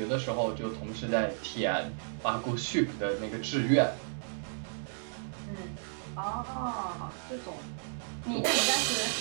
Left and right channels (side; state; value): left; silent; digital silence